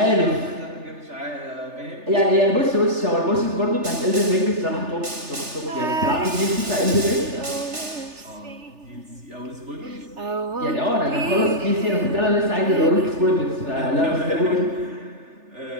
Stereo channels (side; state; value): left; late; 3.4 ms